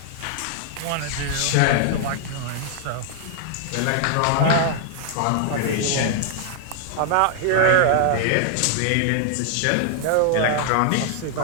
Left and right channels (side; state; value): both; different; correlation 0.00